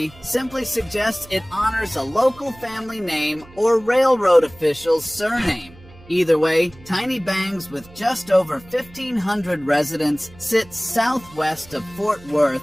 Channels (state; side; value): noise; right; hum, 23 dB below the sound